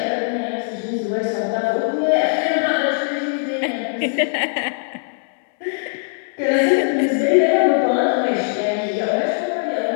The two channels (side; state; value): right; silent; 64 dB below the other